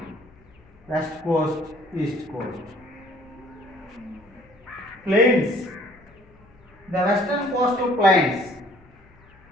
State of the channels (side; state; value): left; noise; hum, 28 dB below the sound